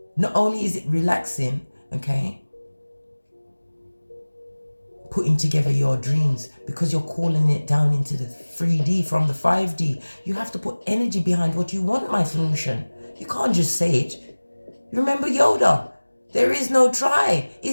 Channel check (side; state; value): both; inverted; correlation -1.00